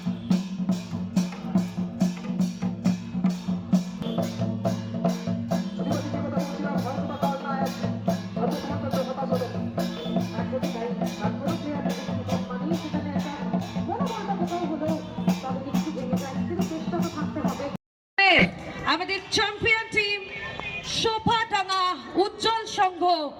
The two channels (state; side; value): identical; both; correlation 1.00